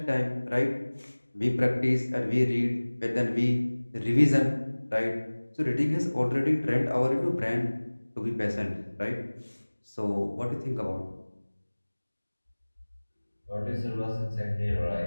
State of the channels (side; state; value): both; inverted; correlation -1.00